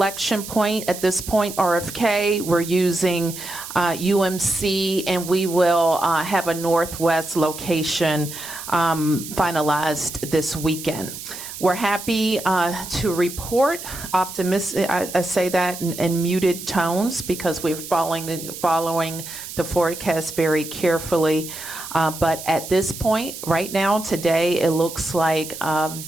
point at this point, RFK. We're using UMC, and we will have a Northwest location finalized this weekend. We're happy to report, optimistic, I say that in muted tones because we're following the forecast very carefully. But at this point, right now, today, it looks like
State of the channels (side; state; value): right; noise; hiss, 11 dB below the sound